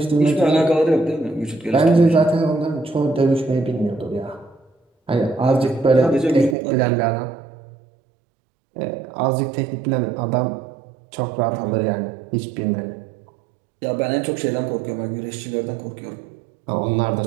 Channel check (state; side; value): drops out; left; at 6.6 s